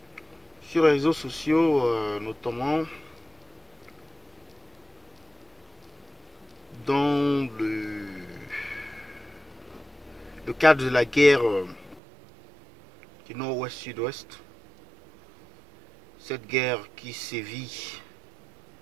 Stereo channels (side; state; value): left; drops out; at 12.0 s